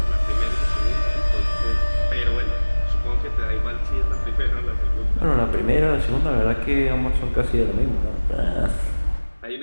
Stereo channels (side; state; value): both; inverted; correlation -1.00